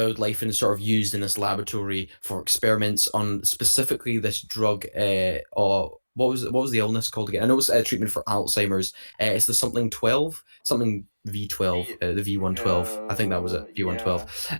and sort of used in this laboratory for experiments on specifically this drug. Or what was the illness called again? I know it's a treatment for Alzheimer's. It's the something 12, something V12, the V112. I think that was it, V112.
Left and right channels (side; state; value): both; inverted; correlation -1.00